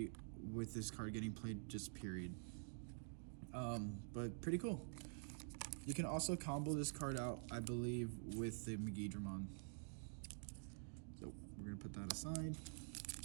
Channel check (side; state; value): left; silent; digital silence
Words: with this card getting played, just period. But pretty cool. You can also combo this card out, I believe, with the Megidramon. So we're gonna put that aside.